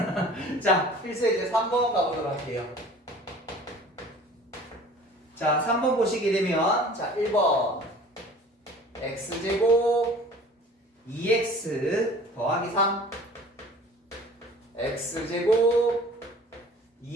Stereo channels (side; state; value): both; normal; correlation 0.46